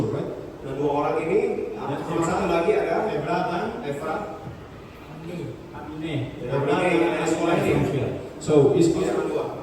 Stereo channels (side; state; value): both; identical; correlation 1.00